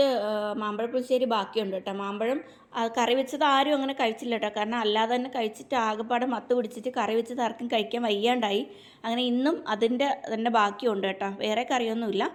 മാമ്പഴ പുളിശ്ശേരി ബാക്കിയുണ്ട് കേട്ടോ. മാമ്പഴം കറി വെച്ചത് ആരും അങ്ങനെ കഴിച്ചില്ല കേട്ടോ. കാരണം അല്ലാതെ തന്നെ കഴിച്ചിട്ട് ആകെപ്പാടെ മത്ത് പിടിച്ചിട്ട് കറി വെച്ചത് ആർക്കും കഴിക്കാൻ വയ്യാണ്ടായി. അങ്ങനെ ഇന്നും അതിൻ്റെ തന്നെ ബാക്കിയുണ്ട് കേട്ടോ, വേറെ കറിയൊന്നുമില്ല.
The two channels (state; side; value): identical; both; correlation 1.00